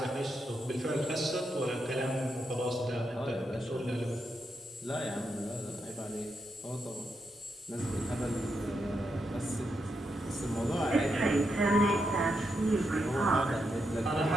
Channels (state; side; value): normal; both; correlation 0.83